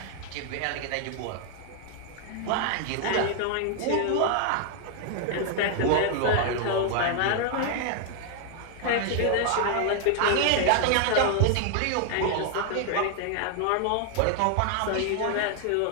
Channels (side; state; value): both; different; correlation 0.00